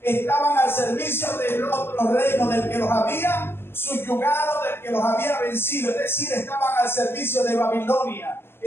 estaban al servicio del otro reino, del que los había subyugado, del que los había vencido. Es decir, estaban al servicio de Babilonia,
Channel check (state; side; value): late; right; 0.11 ms